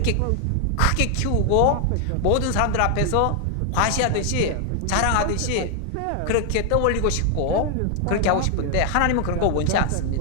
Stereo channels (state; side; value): different; both; correlation 0.00